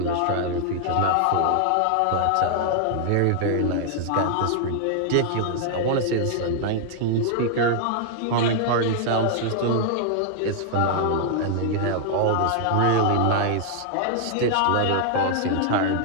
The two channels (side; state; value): both; different; correlation 0.00